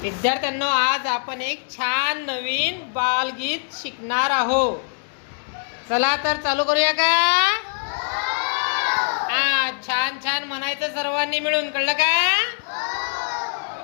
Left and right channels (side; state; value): right; silent; digital silence